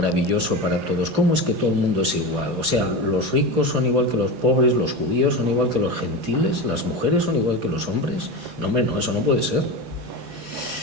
para todos? ¿Cómo es que todo el mundo es igual? O sea, los ricos son igual que los pobres, los judíos son igual que los gentiles, las mujeres son igual que los hombres. No, hombre, no, eso no puede ser.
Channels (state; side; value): late; left; 18 ms